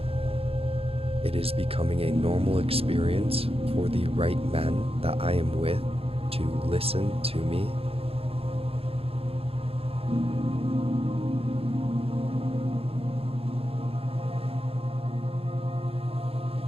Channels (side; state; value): left; late; 0.28 ms